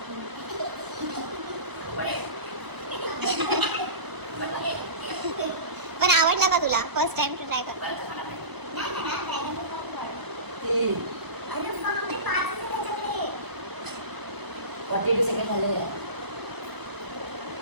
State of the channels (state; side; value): late; left; 1.0 ms